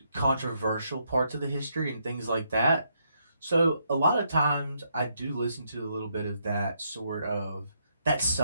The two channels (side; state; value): both; inverted; correlation -0.76